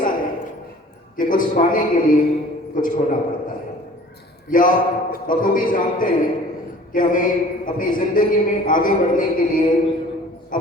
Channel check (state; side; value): normal; both; correlation 0.48